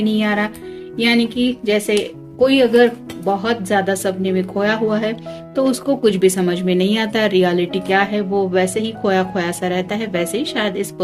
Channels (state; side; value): identical; both; correlation 1.00